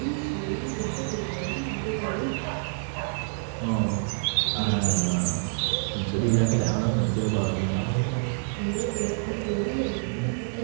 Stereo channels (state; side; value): silent; left; digital silence